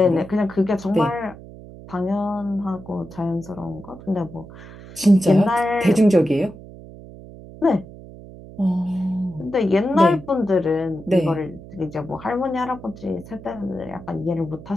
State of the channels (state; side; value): noise; right; hum, 17 dB below the sound